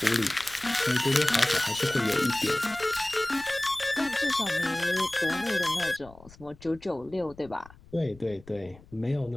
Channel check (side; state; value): left; noise; rumble, 23 dB below the sound